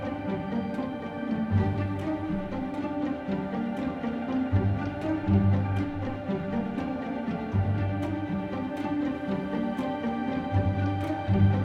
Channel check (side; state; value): both; identical; correlation 1.00